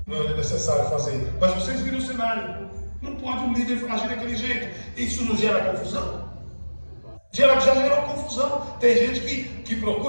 Não é necessário fazer. Mas vocês viram o cenário. Não pode um líder agir daquele jeito. Isso não gera confusão? Já gerou confusão. Tem gente que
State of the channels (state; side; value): inverted; both; correlation -1.00